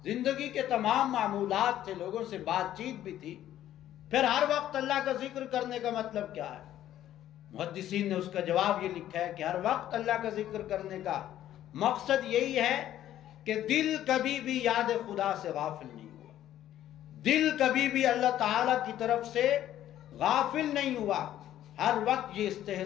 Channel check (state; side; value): quieter; right; 12.3 dB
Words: زندگی کے تمام معمولات تھے، لوگوں سے بات چیت بھی تھی۔ پھر ہر وقت اللہ کا ذکر کرنے کا مطلب کیا ہے؟ محدثین نے اس کا جواب یہ لکھا ہے کہ ہر وقت اللہ کا ذکر کرنے کا مقصد یہی ہے کہ دل کبھی بھی یاد خدا سے غافل نہیں ہوا، دل کبھی بھی اللہ تعالیٰ کی طرف سے غافل نہیں ہوا، ہر وقت یہ